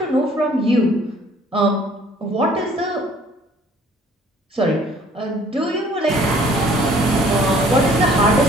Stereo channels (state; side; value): normal; both; correlation 0.56